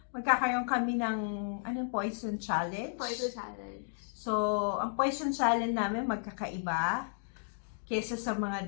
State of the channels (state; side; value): silent; right; digital silence